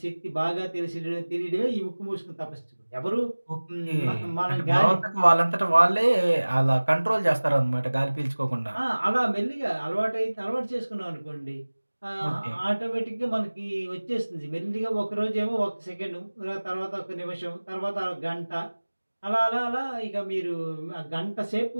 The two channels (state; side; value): inverted; both; correlation -1.00